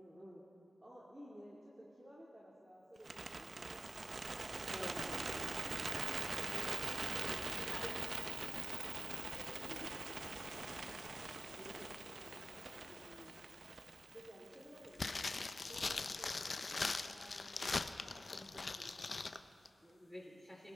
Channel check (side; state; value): both; normal; correlation 0.93